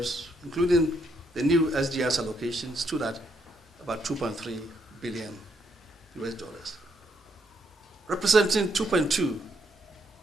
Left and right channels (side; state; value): both; normal; correlation 0.75